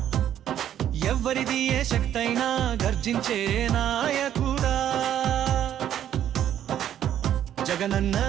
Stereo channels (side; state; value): left; quieter; 10.7 dB